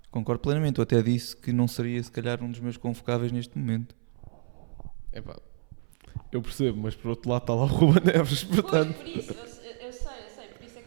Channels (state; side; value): silent; left; 59 dB below the other